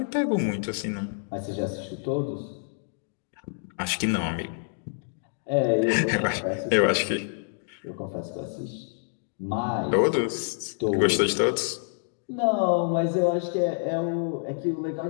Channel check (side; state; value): right; silent; digital silence